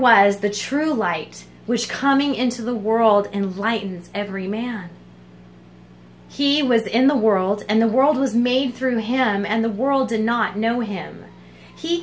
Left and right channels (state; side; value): identical; both; correlation 1.00